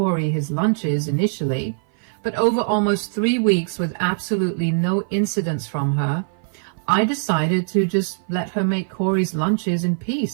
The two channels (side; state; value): left; silent; 56 dB below the other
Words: his lunches initially, but over almost 3 weeks with absolutely no incidents from her, I decided to just let her make Corey's lunches in